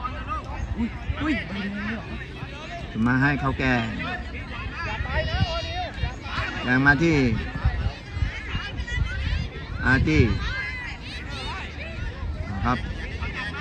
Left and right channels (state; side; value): identical; both; correlation 1.00